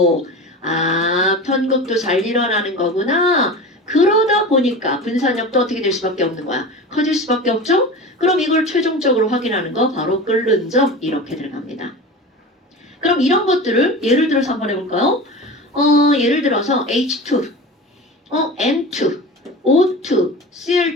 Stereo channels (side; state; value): both; normal; correlation 0.31